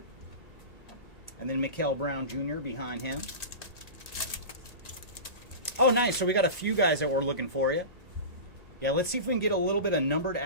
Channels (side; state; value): right; late; 1.8 ms